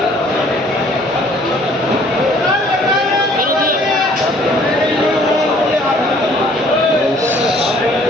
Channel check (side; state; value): both; normal; correlation 0.58